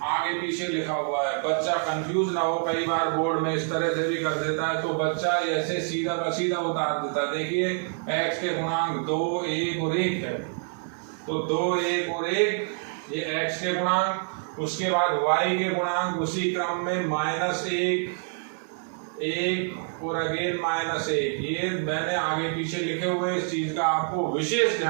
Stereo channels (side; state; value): left; silent; 56 dB below the other